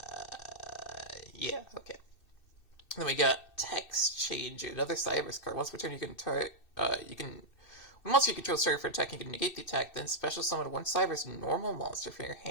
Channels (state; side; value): late; right; 2.6 ms